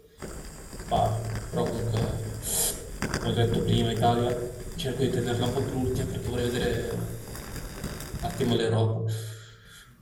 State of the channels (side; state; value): both; identical; correlation 1.00